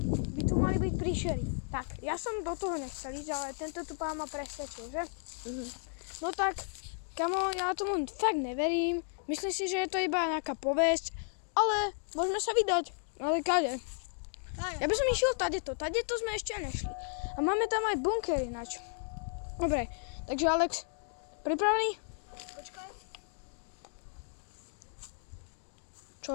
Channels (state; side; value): silent; right; 55 dB below the other